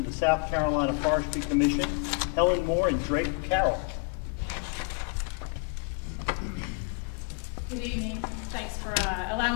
the South Carolina Forestry Commission. Helen Moore and Drake Carroll. Good evening. Thanks for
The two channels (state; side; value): quieter; right; 35.3 dB